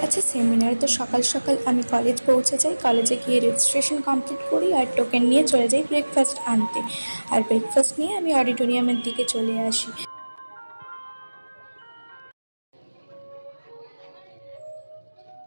আছে সেমিনার, তো সকাল সকাল আমি কলেজ পৌঁছে যাই। কলেজে গিয়ে রেজিস্ট্রেশন কমপ্লিট করি আর টোকেন নিয়ে চলে যাই ব্রেকফাস্ট আনতে। আর ব্রেকফাস্ট নিয়ে আমি অডিটোরিয়ামের দিকে চলে আসি।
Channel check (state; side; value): inverted; both; correlation -1.00